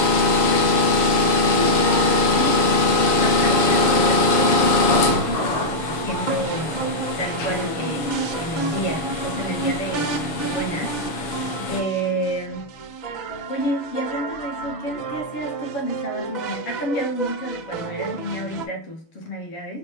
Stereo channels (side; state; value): right; late; 7.0 ms